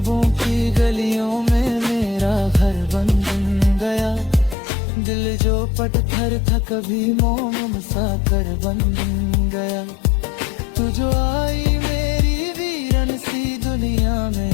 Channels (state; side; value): drops out; right; at 4.5 s